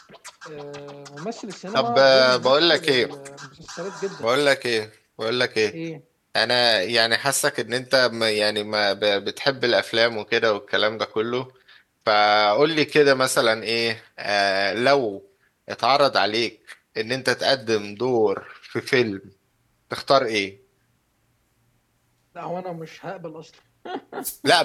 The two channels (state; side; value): identical; both; correlation 1.00